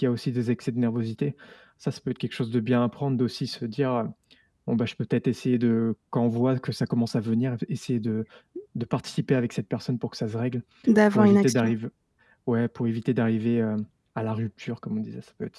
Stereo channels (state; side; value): identical; both; correlation 1.00